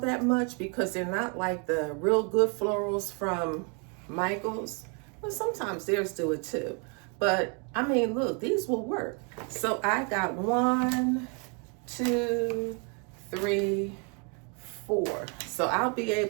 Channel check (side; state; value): left; quieter; 36.8 dB